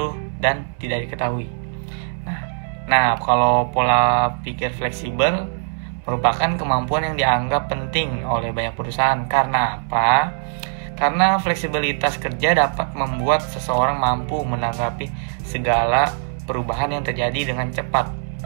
dan tidak diketahui. Nah, kalau pola pikir fleksibel merupakan kemampuan yang dianggap penting oleh banyak perusahaan. Karena apa? Karena fleksibilitas kerja dapat membuat seseorang mampu menanggapi segala perubahan yang terjadi dengan cepat.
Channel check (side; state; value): left; silent; 65 dB below the other